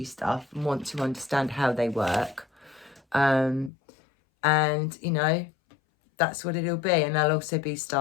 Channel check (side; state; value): right; drops out; at 3.7 s